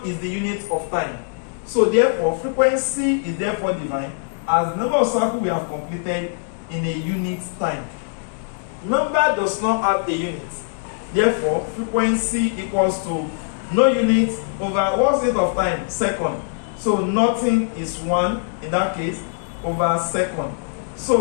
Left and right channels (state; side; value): silent; right; digital silence